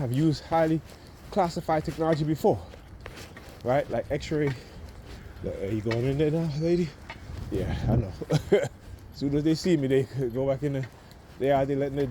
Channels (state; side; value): identical; both; correlation 1.00